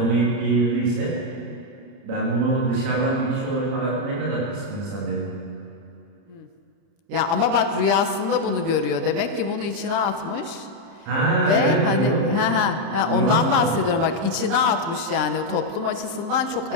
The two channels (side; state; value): left; late; 30 ms